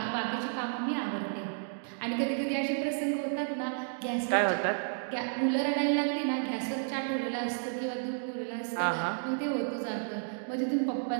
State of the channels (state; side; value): silent; left; digital silence